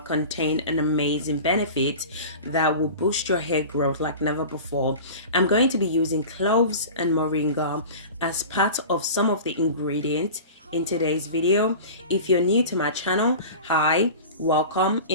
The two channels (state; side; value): inverted; both; correlation -0.35